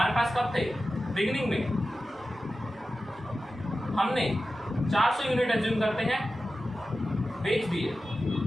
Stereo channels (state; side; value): normal; both; correlation 0.93